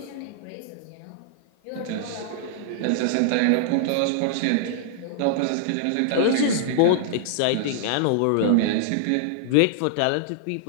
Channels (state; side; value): different; both; correlation -0.01